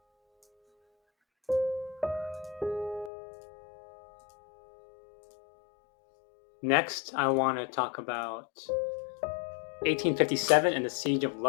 Next, I want to talk about 1857 and the Siege of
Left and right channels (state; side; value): drops out; right; at 3.1 s